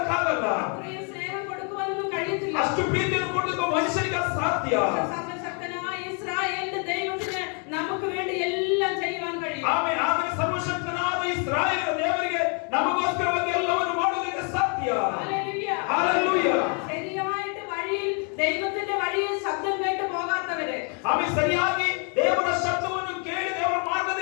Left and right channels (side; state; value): right; quieter; 38.5 dB